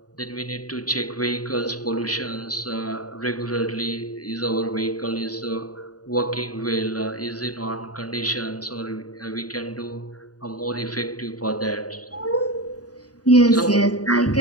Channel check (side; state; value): right; late; 0.68 ms